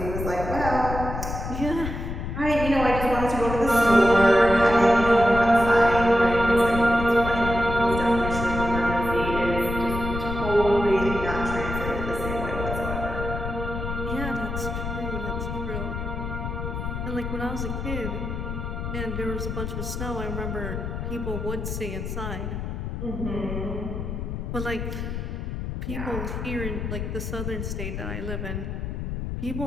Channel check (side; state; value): left; noise; rumble, 5 dB below the sound